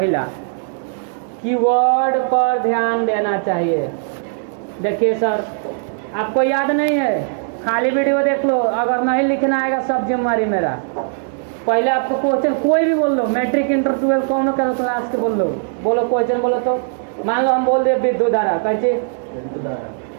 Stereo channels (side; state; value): left; silent; digital silence